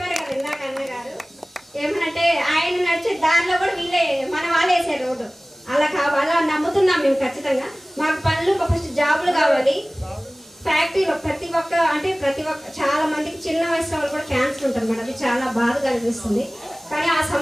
కదా ఇందాక అన్నగారు ఏమనంటే ఆయన నడిచే దారిలో కూడా వీళ్ళే మన వాళ్ళు వేసారు రోడ్డు. అలా నమ్ముతున్నాం మేము. ఖచ్చితంగా మాకు పనులు, ఫస్ట్ జాబులు కావాలి. ఫ్యాక్టరీలో ప్రతి ఒక్క చాలా మందికి చిన్న వయసులో వాళ్ళు కూడా క్యాన్సర్ ఉంటుంది మేడం. అది చాలా బాధగా అనిపిస్తుంది. కానీ ఆ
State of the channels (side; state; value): both; normal; correlation 0.98